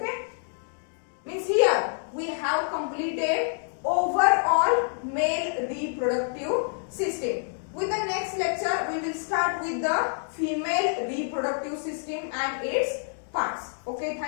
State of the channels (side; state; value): right; silent; digital silence